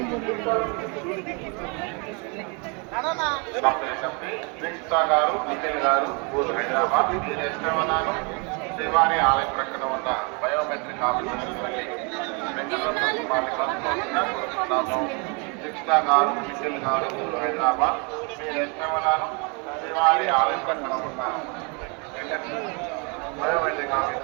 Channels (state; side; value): quieter; left; 33.3 dB